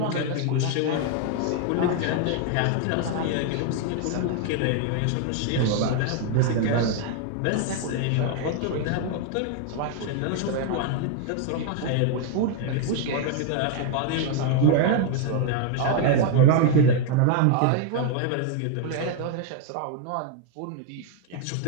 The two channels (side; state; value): both; different; correlation 0.00